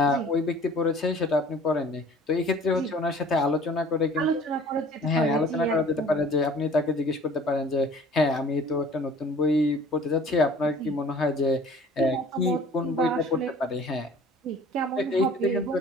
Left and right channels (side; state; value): both; normal; correlation 0.49